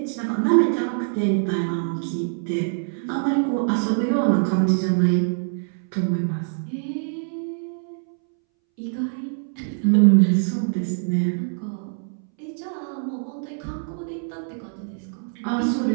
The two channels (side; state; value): left; silent; 63 dB below the other